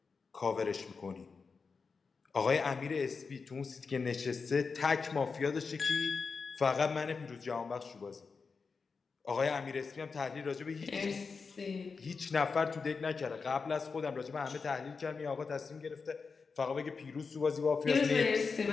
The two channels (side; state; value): right; quieter; 4.9 dB